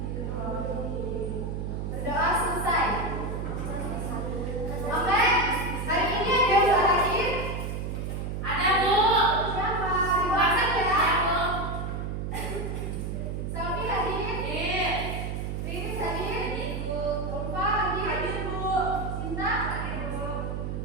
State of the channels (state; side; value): noise; right; hum, 3 dB below the sound